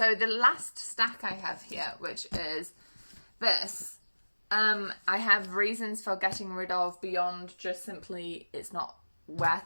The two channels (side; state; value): both; inverted; correlation -1.00